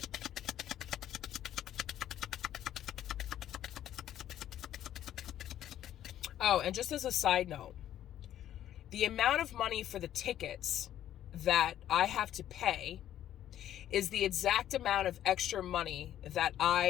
Oh, and just as a side note, the amount of money for the tickets that I have to pay is the exact amount of extra money that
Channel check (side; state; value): right; quieter; 11.6 dB